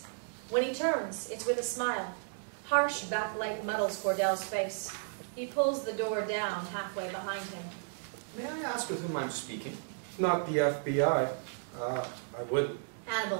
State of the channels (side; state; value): left; silent; digital silence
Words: When he turns, it's with a smile. Harsh backlight muddles Cordell's face. He pulls the door down halfway behind him. May I ask with whom I'm speaking? Not the FBI. I wouldn't.